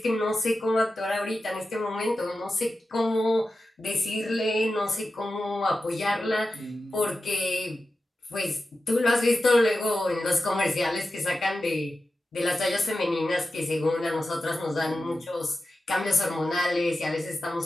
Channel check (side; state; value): both; normal; correlation 0.92